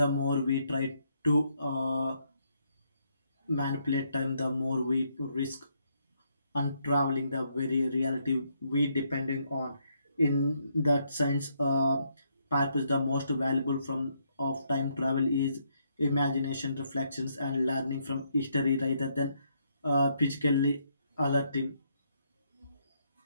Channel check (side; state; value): both; inverted; correlation -0.74